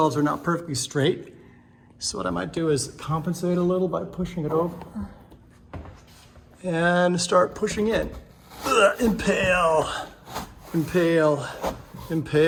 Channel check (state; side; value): identical; both; correlation 1.00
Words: are not perfectly straight. So what I might do is compensate a little by pushing it over and start pushing in. Impale, impale,